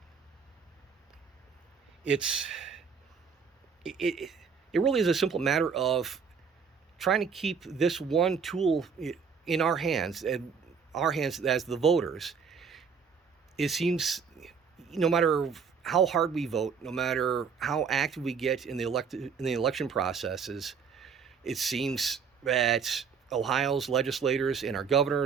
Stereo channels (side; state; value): left; quieter; 6.1 dB